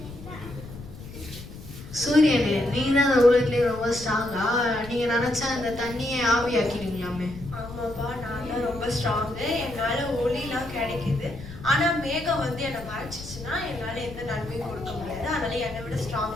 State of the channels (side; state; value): left; noise; rumble, 14 dB below the sound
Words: சூரியனே, நீங்க தான் அந்த உலகத்திலே ரொம்ப ஸ்ட்ராங்கா? நீங்க நினைச்சா அந்த தண்ணியை ஆவியாக்கிடுவீங்களாமே. ஆமாப்பா, நான் தான் ரொம்ப ஸ்ட்ராங்கு. என்னால ஒளிலாம் கிடைக்குது. ஆனா மேகம் வந்து என்னை மறைச்சிச்சுன்னா என்னால எந்த நன்மையும் கொடுக்க முடியாது. அதனால என்னை விட